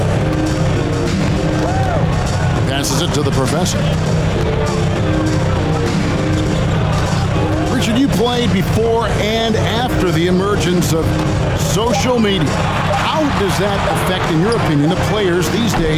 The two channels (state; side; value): identical; both; correlation 1.00